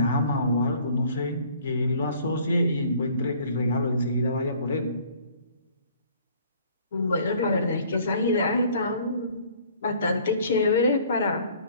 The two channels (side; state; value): both; inverted; correlation -0.56